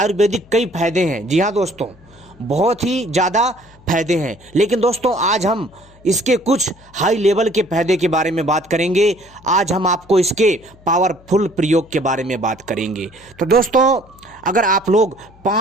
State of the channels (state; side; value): noise; left; hum, 26 dB below the sound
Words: कई फायदे हैं। जी हाँ दोस्तों, बहुत ही ज़्यादा फायदे हैं, लेकिन दोस्तों आज हम इसके कुछ हाई लेवल के फायदे के बारे में बात करेंगे। आज हम आपको इसके पावरफुल प्रयोग के बारे में बात करेंगे। तो दोस्तों अगर आप लोग